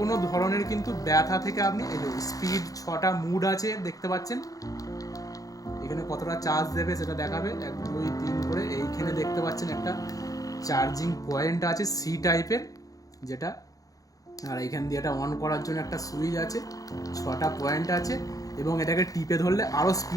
ধরনের কিন্তু ব্যথা থেকে আপনি, এই যে স্পিড 6টা মুড আছে দেখতে পাচ্ছেন, এখানে কতটা চার্জ দেবে সেটা দেখাবে, 1 2 3 করে। এইখানে দেখতে পাচ্ছেন একটা চার্জিং পয়েন্ট আছে সি টাইপের যেটা, আর এইখান দিয়ে এটা অন করার জন্য একটা সুইচ আছে, 6টা পয়েন্ট আছে, এবং এটাকে টিপে ধরলে আরও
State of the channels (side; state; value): right; late; 0.17 ms